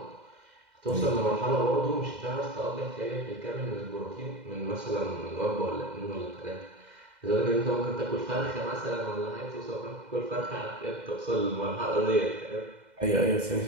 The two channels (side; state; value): left; late; 2.0 ms